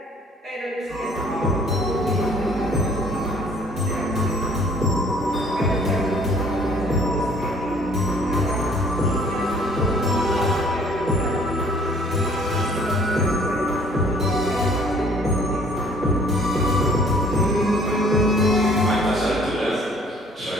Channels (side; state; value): both; normal; correlation 0.57